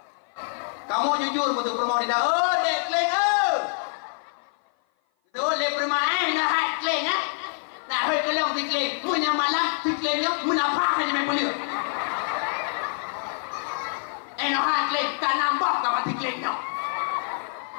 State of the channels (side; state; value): right; silent; 56 dB below the other